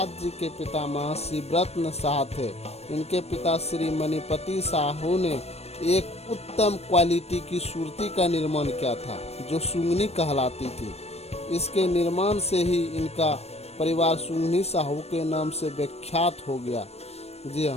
जी के पिता महर्षि व्रतन शाह थे। इनके पिता श्री मणिपति साहू ने एक उत्तम क्वालिटी की सूरती का निर्माण किया था जो सुंगनी कहलाती थी। इसके निर्माण से ही इनका परिवार सुंगनी साहू के नाम से विख्यात हो गया। जी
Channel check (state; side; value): late; right; 0.31 ms